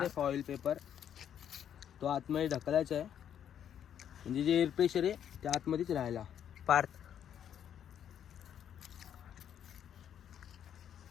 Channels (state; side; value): quieter; right; 9.4 dB